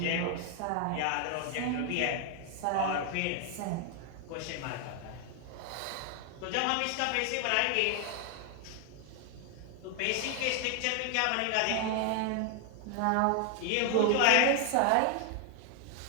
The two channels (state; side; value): different; both; correlation 0.00